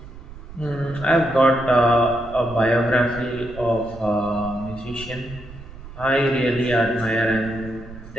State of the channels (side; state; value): right; noise; rumble, 16 dB below the sound